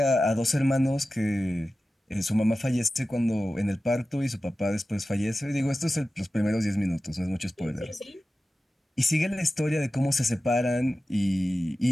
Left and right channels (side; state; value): both; normal; correlation 0.94